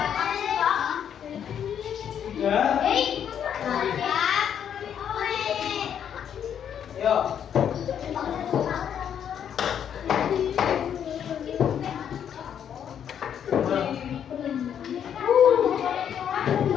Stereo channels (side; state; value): right; quieter; 8.8 dB